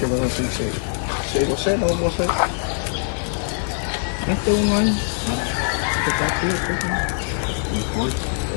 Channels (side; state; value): right; silent; digital silence